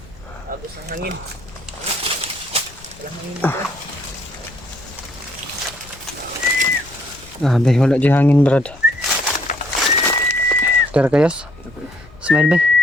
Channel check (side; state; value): left; noise; rumble, 22 dB below the sound